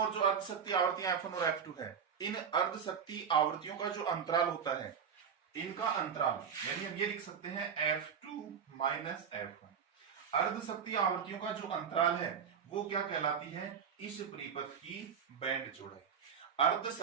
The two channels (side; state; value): left; quieter; 7.1 dB